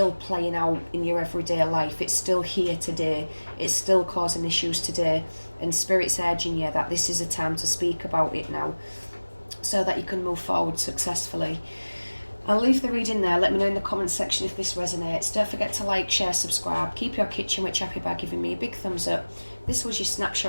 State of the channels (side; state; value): both; inverted; correlation -1.00